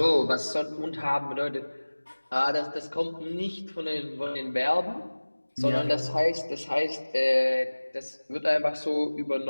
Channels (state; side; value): inverted; both; correlation -1.00